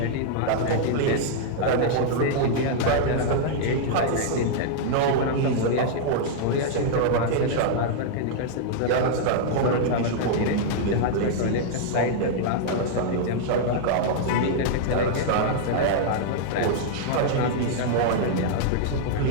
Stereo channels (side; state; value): both; different; correlation -0.01